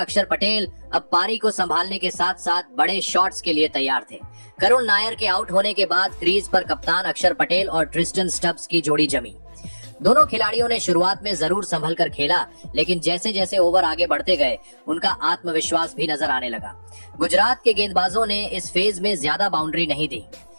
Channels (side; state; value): both; inverted; correlation -1.00